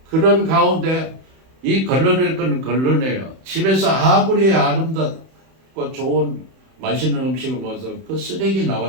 그런 가운데 이 걸러낼 건 걸러내요. 집에서 아무리 아름답고 좋은 맛있는 음식을 먹어서 그 쓰레기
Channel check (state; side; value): late; left; 31 ms